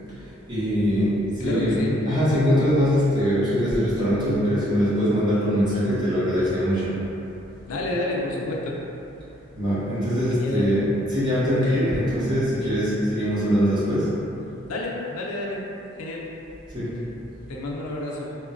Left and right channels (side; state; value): both; normal; correlation 0.67